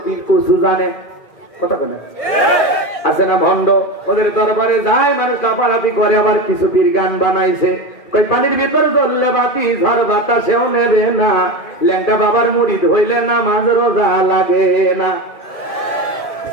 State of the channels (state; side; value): late; right; 2.4 ms